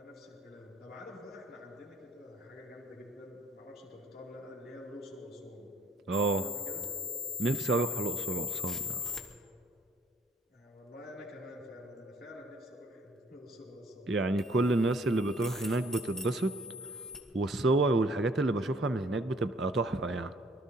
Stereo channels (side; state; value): both; normal; correlation 0.60